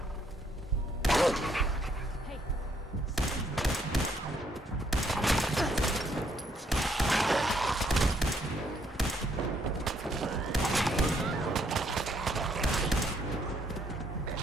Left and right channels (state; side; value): normal; both; correlation 0.70